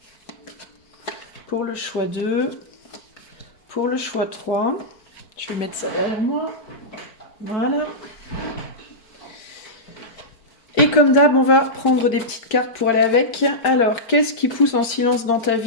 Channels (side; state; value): right; late; 4.5 ms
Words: pour le choix 2, pour le choix 3, je vais mettre ça derrière moi, voilà. Et comme d'hab, on va prendre des petites cartes pour aller avec. Alors, qu'est-ce qui pousse en silence dans ta